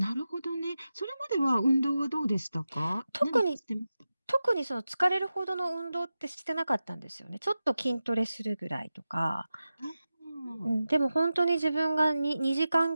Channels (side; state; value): both; inverted; correlation -0.93